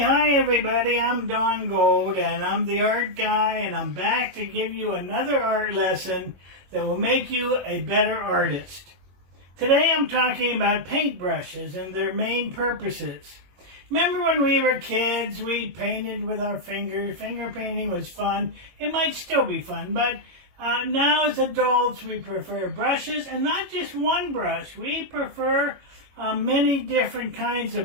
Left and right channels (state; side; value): late; left; 21 ms